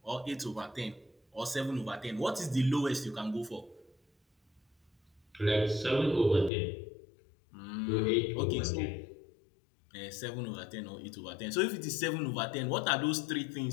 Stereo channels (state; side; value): drops out; right; at 6.5 s